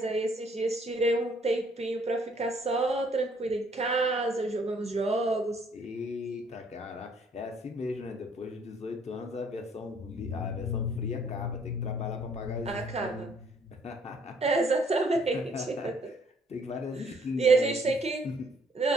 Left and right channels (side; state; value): both; normal; correlation 0.63